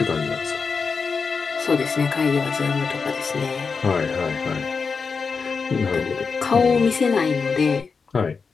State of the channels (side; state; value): right; quieter; 5.1 dB